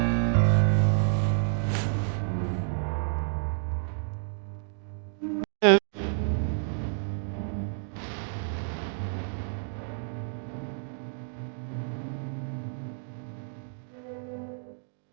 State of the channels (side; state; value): left; silent; digital silence